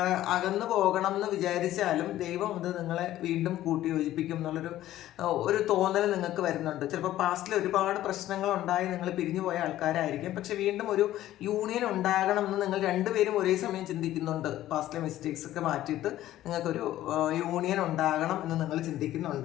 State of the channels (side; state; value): right; quieter; 13.9 dB